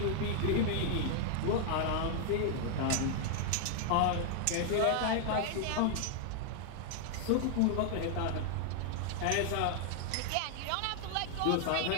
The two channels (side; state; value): both; different; correlation 0.00